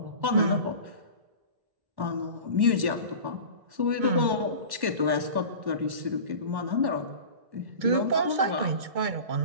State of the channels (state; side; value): late; left; 1.1 ms